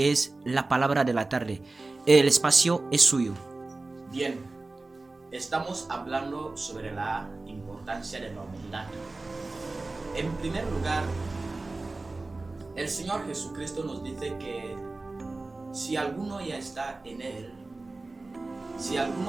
es la palabra de la tarde. El espacio es suyo. Bien, estamos hablando sobre la importancia de la humildad. En primer lugar, el Señor Jesucristo nos dice que si alguno ya está en Él, si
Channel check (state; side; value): quieter; left; 3.3 dB